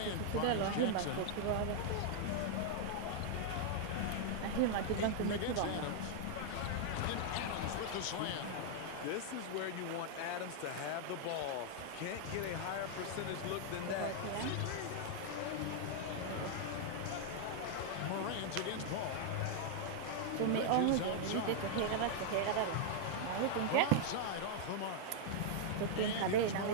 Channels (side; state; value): both; different; correlation -0.01